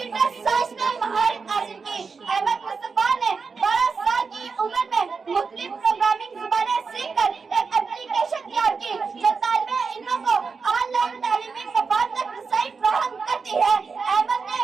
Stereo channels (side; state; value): left; quieter; 5.0 dB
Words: साइंस में महारत हासिल की। अहमद मुस्तफा ने 12 साल की उम्र में मुख्तलिफ प्रोग्रामिंग ज़बानें सीखकर एक एप्लीकेशन तैयार की जो तालिबे इल्मों को ऑनलाइन तालीमी मफाद तक रसाई फराहम करती है। अहमद ने